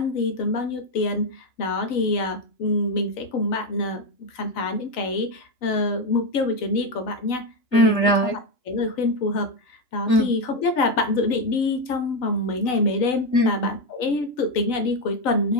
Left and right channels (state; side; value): late; right; 3.9 ms